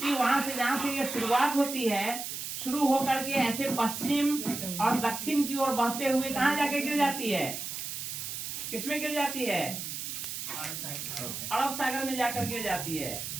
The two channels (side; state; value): right; noise; hiss, 6 dB below the sound